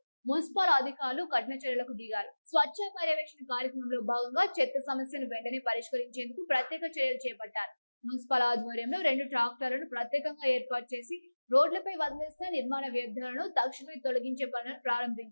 మున్సిపల్ అధికారులు కఠిన చర్యలకు దిగారు. స్వచ్ఛ పర్యవేక్షణ కార్యక్రమంలో భాగంగా చెత్త సమస్యను వెంటనే పరిష్కరించేందుకు ప్రత్యేక చర్యలు చేపట్టారు. మున్సిపల్ ఆధ్వర్యంలో 2 ట్రాక్టర్లను ప్రత్యేకంగా ఏర్పాటు చేసి రోడ్లపై వదిలేసిన నిర్మాణ వ్యర్థాలను తక్షణమే తొలగించే పనులను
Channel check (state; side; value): inverted; both; correlation -1.00